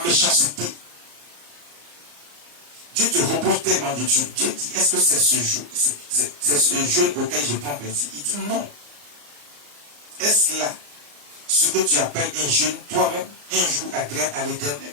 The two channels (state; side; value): late; left; 34 ms